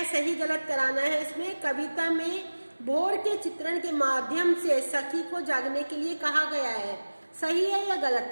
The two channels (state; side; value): inverted; both; correlation -1.00